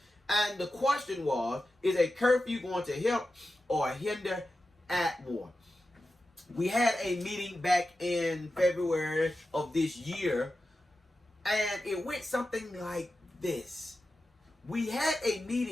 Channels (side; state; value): both; normal; correlation 0.92